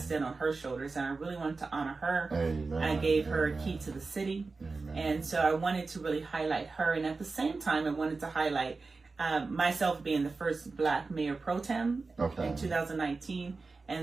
on her shoulders, and I really wanted to honor her. I gave her a key to the city. And so I wanted to really highlight her. And at the same time, I wanted to highlight myself being the first Black mayor pro tem in 2019.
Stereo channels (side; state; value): left; quieter; 4.0 dB